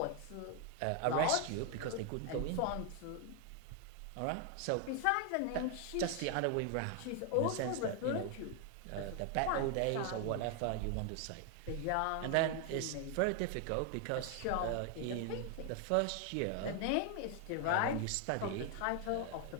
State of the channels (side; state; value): both; different; correlation 0.01